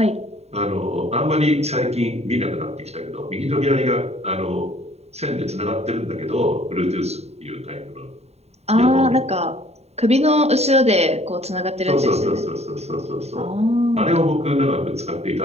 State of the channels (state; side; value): late; left; 0.31 ms